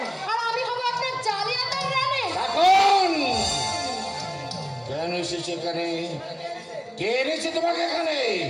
আর আমি হব আপনার জালিয়াতের রানী। কাকুন কেন এসেছে এখানে? কে এনেছে তোমাকে এখানে?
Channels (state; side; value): identical; both; correlation 1.00